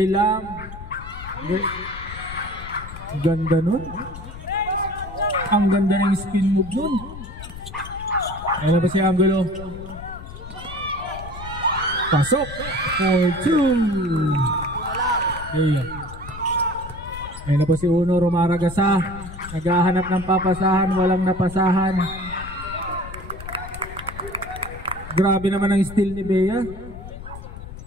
Lam. Ganda nun. Ang ganda ng spin move nun. Ayan na ba si Angulo? Pasok for 2. Okay. Ayan na po si Uno Romaragasa. Naghahanap ng papasahan, walang napasahan. Grabe naman ang steal ni Bea.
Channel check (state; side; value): noise; left; rumble, 12 dB below the sound